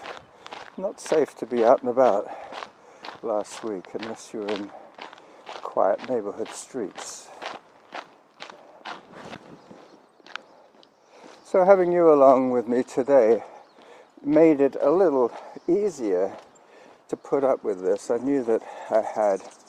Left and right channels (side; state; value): both; identical; correlation 1.00